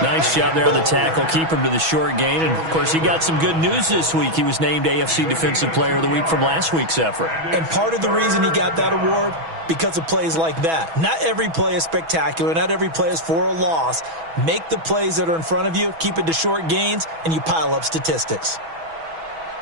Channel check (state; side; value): late; left; 6.1 ms